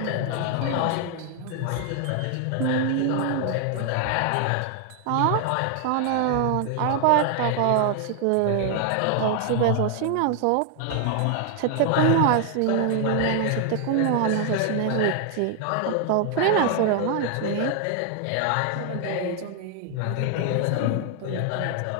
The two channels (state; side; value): different; both; correlation 0.00